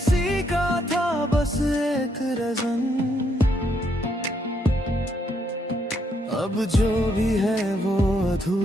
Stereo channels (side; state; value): both; normal; correlation 0.74